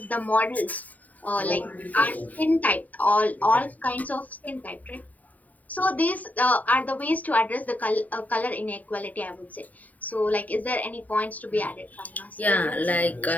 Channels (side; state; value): right; late; 0.075 ms